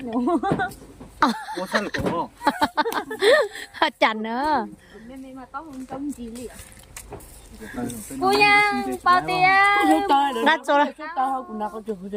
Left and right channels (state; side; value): identical; both; correlation 1.00